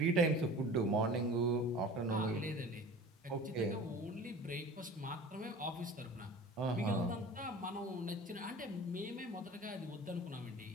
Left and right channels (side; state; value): both; normal; correlation 0.40